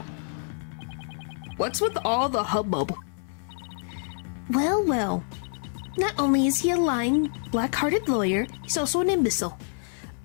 What's with all the hubbub? Well, well. Not only is he a lying, black-hearted lawyer, he's also an imbecile.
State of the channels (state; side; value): silent; right; 60 dB below the other